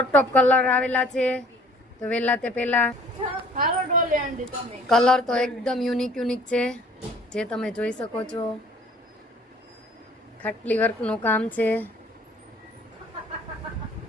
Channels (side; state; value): both; normal; correlation 0.54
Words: ટોપ કલર આવેલા છે. તો વહેલા તે પહેલા કલર તો એકદમ યુનિક યુનિક છે, જે તમે જોઈ શકો છો. ખાટલી વર્કનું કામ છે.